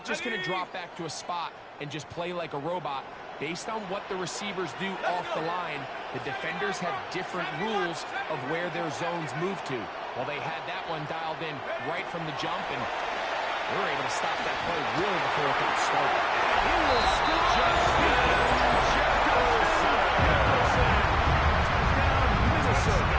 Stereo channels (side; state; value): both; identical; correlation 1.00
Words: just going to drop back to a spot and just play like a robot. Based on what the receivers do off the line, the defenders have different rules of where their zones move to. Well, they had that one dialed in right from the jump, and they were able to stop that play really before it got started. He will scoop just Jefferson. Touchdown,